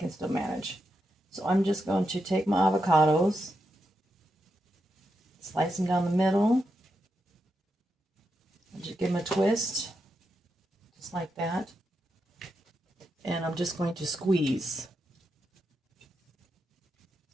still manage. So I'm just going to take my avocados, slice them down the middle, and just give them a twist. Just like that. And I'm just going to squeeze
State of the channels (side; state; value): both; normal; correlation 0.85